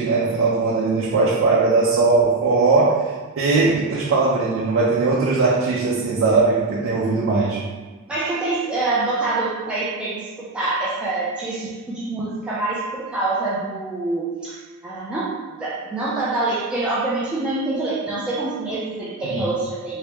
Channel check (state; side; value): quieter; left; 3.1 dB